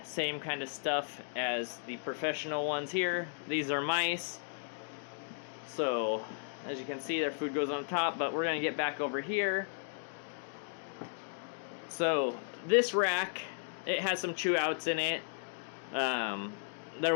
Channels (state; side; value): silent; right; digital silence